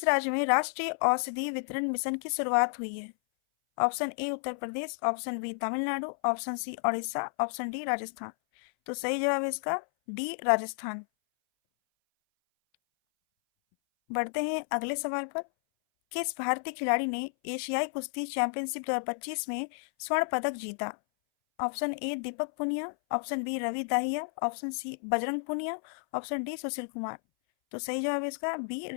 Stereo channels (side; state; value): right; silent; 57 dB below the other